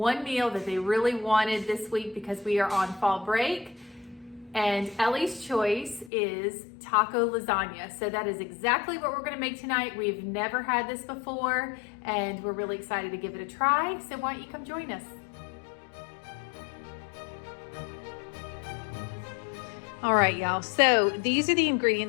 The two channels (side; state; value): right; drops out; at 6.1 s